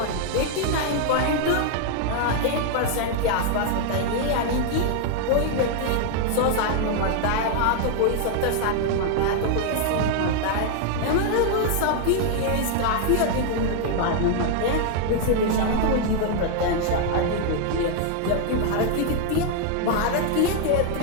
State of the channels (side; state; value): both; different; correlation 0.00